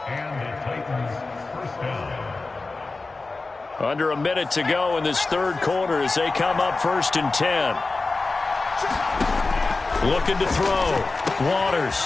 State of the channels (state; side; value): quieter; right; 3.6 dB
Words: Under a minute to go in this third quarter as they come up 1st and 10. Looking to throw.